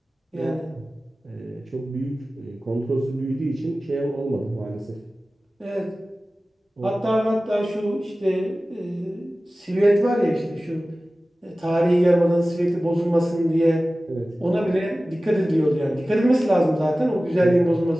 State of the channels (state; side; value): normal; both; correlation 0.96